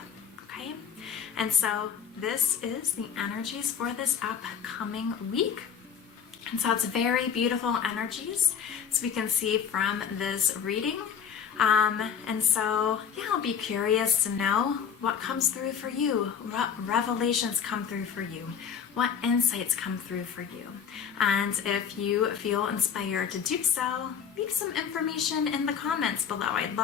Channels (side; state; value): right; quieter; 7.5 dB